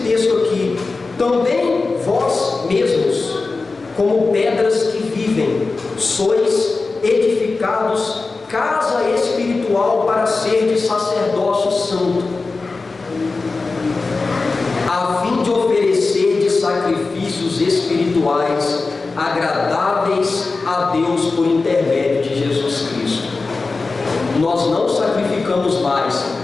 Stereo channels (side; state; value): right; quieter; 3.9 dB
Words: texto aqui: também vós mesmos, como pedras que vivem, sois edificados casa espiritual para ser de sacerdócio santo, a fim de oferecer de sacrifícios espirituais agradáveis a Deus por intermédio de Jesus Cristo. Nós não sacrificamos mais,